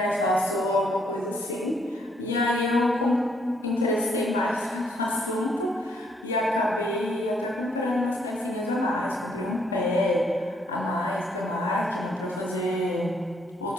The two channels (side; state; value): both; normal; correlation 0.70